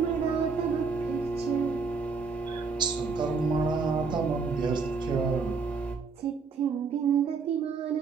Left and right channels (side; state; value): left; quieter; 4.9 dB